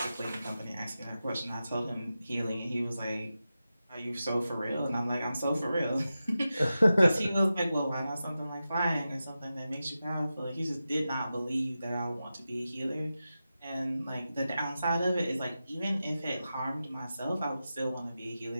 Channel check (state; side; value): inverted; both; correlation -0.92